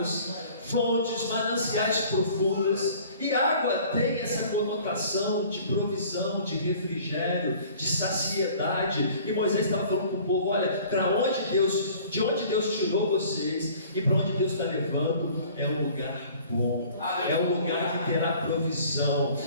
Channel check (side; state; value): both; inverted; correlation -0.50